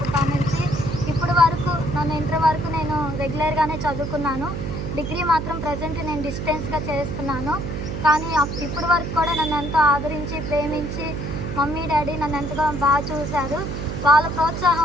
నుంచి ఇప్పటి వరకు నన్ను ఇంటర్ వరకు నేను రెగ్యులర్గానే చదువుకున్నాను. డిగ్రీ మాత్రం ప్రజెంట్ నేను డిస్టెన్స్గా చేస్తున్నాను. కానీ ఇప్పటి వరకు కూడా నన్ను ఎంతో ఆదరించి ప్రేమించి మమ్మీ డాడీ నన్ను ఎంతగా బాగా చూశారు. వాళ్ళ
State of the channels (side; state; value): right; noise; hum, 5 dB below the sound